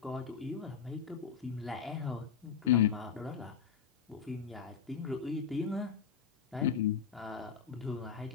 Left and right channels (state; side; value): quieter; right; 7.0 dB